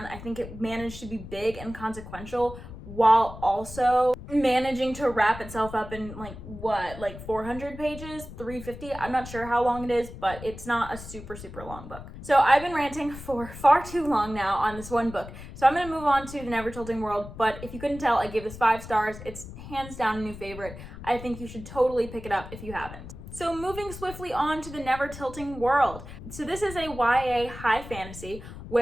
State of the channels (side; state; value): left; noise; rumble, 13 dB below the sound